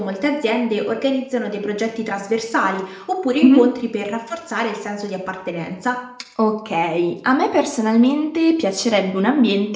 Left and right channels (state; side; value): identical; both; correlation 1.00